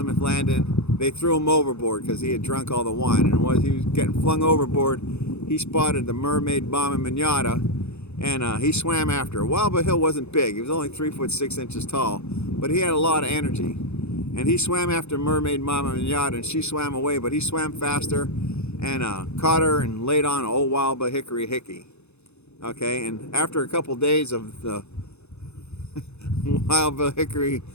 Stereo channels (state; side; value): late; right; 0.81 ms